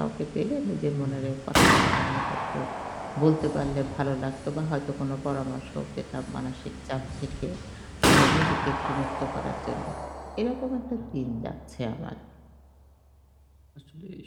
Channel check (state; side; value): identical; both; correlation 1.00